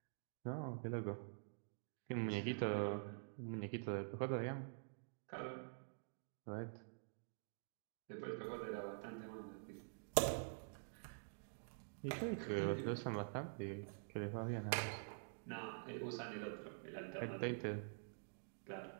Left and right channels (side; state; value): left; silent; digital silence